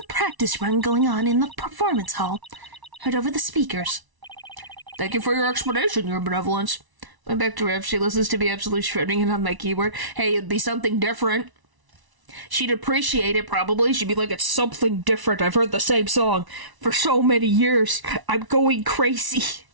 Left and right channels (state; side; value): late; left; 1.0 ms